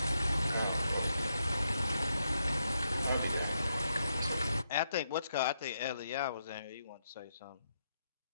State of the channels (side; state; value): both; inverted; correlation -0.81